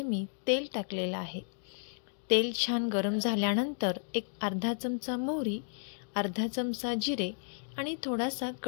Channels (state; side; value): silent; right; digital silence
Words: मी तेल टाकलेलं आहे। तेल छान गरम झाल्यानंतर एक अर्धा चमचा मोहरी, अर्धा चमचा जिरे आणि थोडासा